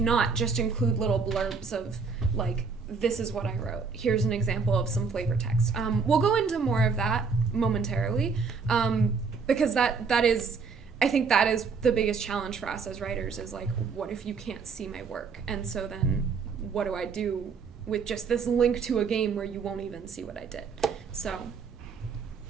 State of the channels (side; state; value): left; quieter; 5.2 dB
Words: just include little blurbs of, like, this is what I wrote. Here's an example of some flavor text. We'll go into more of that momentarily, because that is... I think that is the biggest challenge for us as writers is like, what if you can't see my work? And so then what do I do with just this link to a game where you won't even see what I did? So